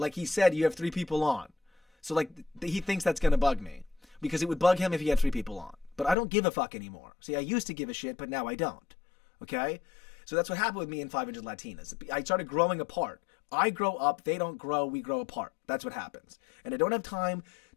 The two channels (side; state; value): right; drops out; at 6.2 s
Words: he said, you have 3 people on. So he thinks that's going to bug me because it would bug him if he had 3 people on. But I don't give a fuck anymore. See, I used to give a shit, but now I don't. Okay? So that's what happened with me and 500 Latinas. I started growing apart. I grow up, they don't grow, we grow apart. That's what happens. And I don't have time